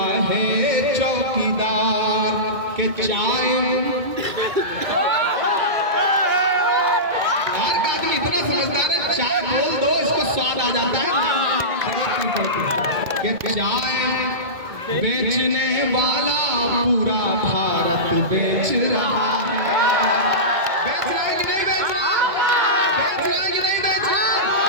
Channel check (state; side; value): late; left; 2.2 ms